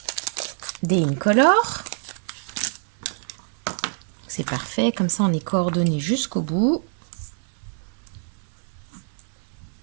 des Incolor. C'est parfait, comme ça on est coordonné jusqu'au bout.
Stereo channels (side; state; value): left; silent; 62 dB below the other